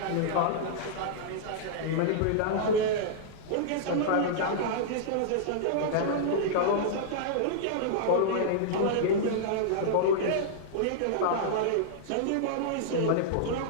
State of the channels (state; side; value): different; both; correlation -0.02